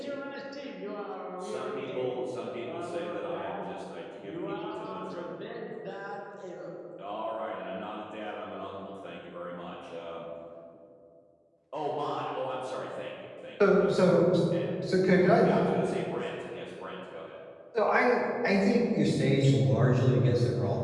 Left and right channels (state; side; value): identical; both; correlation 1.00